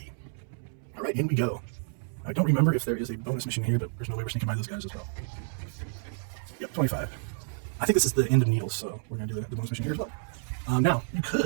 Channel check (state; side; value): silent; left; 58 dB below the other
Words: All right, in we go. I don't remember if there is a bonus mission here, but there's no way we're sneaking by those guys as well. Yep, 25. I think this is the end of Needles, so we're going to do the bonus mission here as well. Now, you